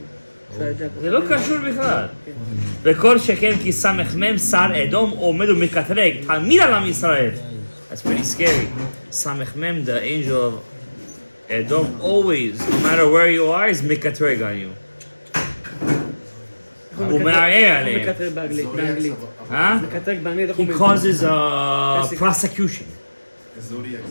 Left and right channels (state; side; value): inverted; both; correlation -1.00